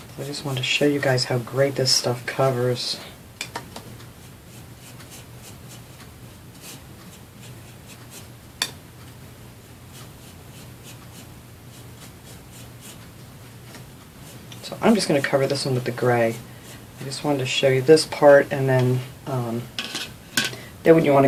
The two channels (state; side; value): identical; both; correlation 1.00